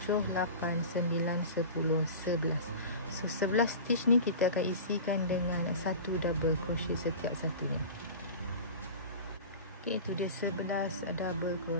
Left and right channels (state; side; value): inverted; both; correlation -0.34